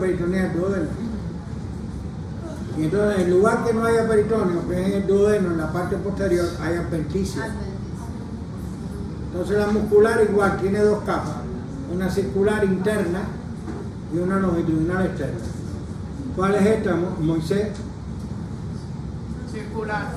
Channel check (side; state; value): both; identical; correlation 1.00